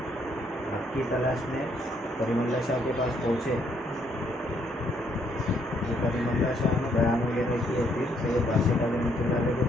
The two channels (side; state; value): both; normal; correlation 0.70